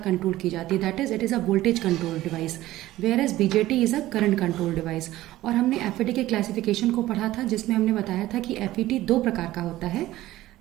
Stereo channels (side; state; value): left; quieter; 15.7 dB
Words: की जाती है। That is it is a voltage control device, whereas BJT is a current control device. और हमने FET के क्लासिफिकेशन को पढ़ा था, जिसमें हमने बताया था कि FET दो प्रकार का होता है,